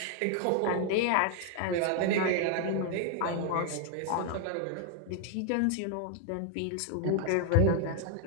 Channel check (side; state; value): both; different; correlation 0.00